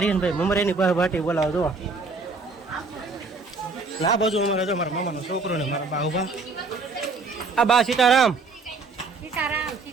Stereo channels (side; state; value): left; quieter; 4.0 dB